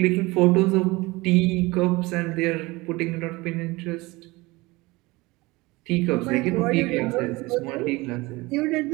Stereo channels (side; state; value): left; quieter; 22.3 dB